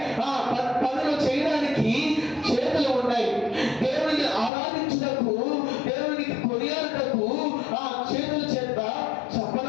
పనులు చేయడానికి చేతులు ఉన్నాయి. దేవునికి ఆరాధించుటకు, దేవునికి కొనియాడుటకు చేతుల చేత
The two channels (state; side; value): drops out; right; at 4.5 s